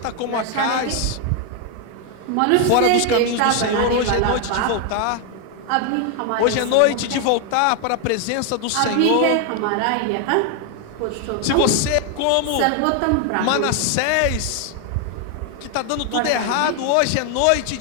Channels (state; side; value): different; both; correlation 0.00